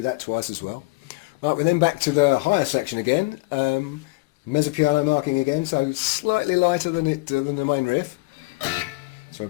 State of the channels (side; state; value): right; quieter; 24.8 dB